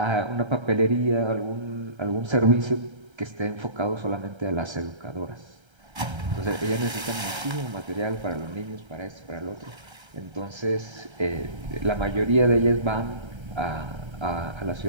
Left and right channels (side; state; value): left; late; 1.3 ms